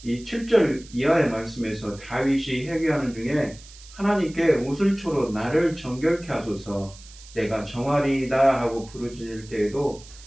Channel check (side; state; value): right; noise; hiss, 20 dB below the sound